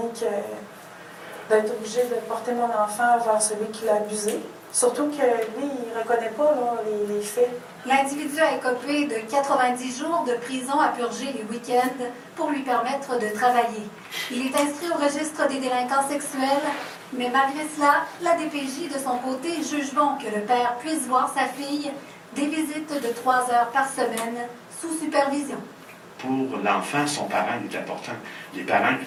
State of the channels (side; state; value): both; identical; correlation 1.00